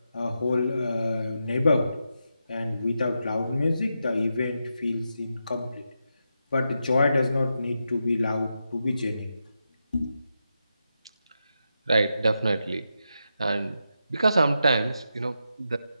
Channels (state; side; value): inverted; both; correlation -0.86